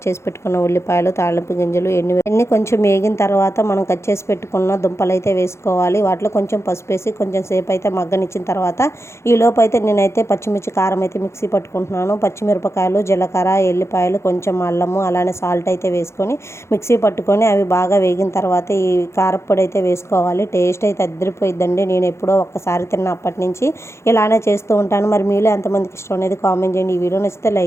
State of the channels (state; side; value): late; right; 0.13 ms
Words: చేసి పెట్టుకున్న ఉల్లిపాయలు, తాళింపు గింజలు, ఎన్ని కొంచెం వేగిన తర్వాత మనం కట్ చేసి పెట్టుకున్న దుంపలు అయితే వేసుకోవాలి. వాటిలో కొంచెం పసుపు వేసి కొంచెం సేపు అయితే మగ్గనిచ్చిన తర్వాత ఈలోపు అయితే నేనైతే పచ్చిమిర్చి, కారం అయితే మిక్సీ పట్టుకుంటున్నాను. పచ్చిమిరపకాయలు, జీలకర్ర, ఎల్లిపాయలు, కొంచెం అల్లము, అలానే సాల్ట్ అయితే వేసుకొని మిక్సీ పట్టుకొని అవి బాగా వేగిన తర్వాత ఈ కారప్పొడి అయితే వేసుకోవాలి. టేస్ట్ అయితే అదిరిపోయిద్దండి. నేను ఎప్పుడో ఒక్కసారి తిన్నప్పటి నుంచి ఇలానే చేస్తూ ఉంటాను. మరి మీలో ఎంతమందికి ఇష్టం అనేది కామెంట్ చేయండి. ఈ వీడియో నచ్చితే